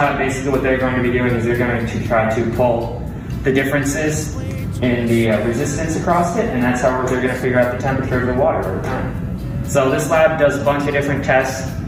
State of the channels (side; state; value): both; identical; correlation 1.00